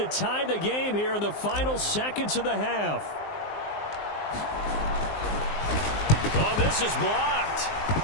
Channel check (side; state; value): right; late; 19 ms